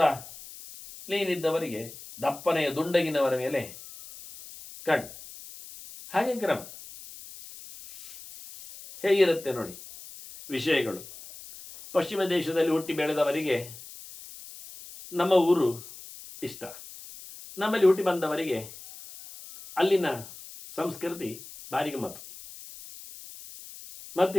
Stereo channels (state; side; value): noise; left; hiss, 16 dB below the sound